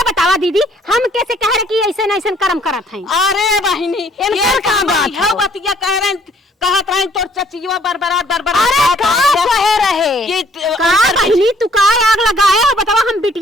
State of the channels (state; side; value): normal; both; correlation 0.61